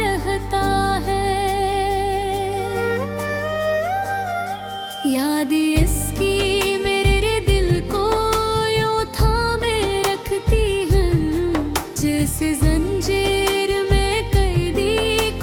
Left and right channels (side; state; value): both; identical; correlation 1.00